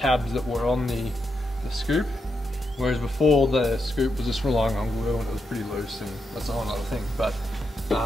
that were on the scoop, whereas before the scoop was just relying on glue and it was pretty loose, and that's a whole other thing. But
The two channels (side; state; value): both; normal; correlation 0.84